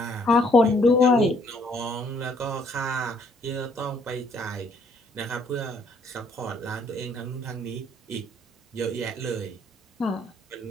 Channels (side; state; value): both; normal; correlation 0.66